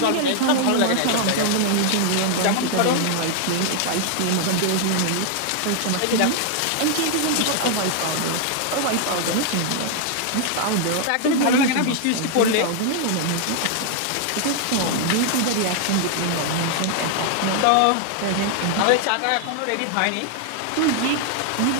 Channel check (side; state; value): both; different; correlation 0.00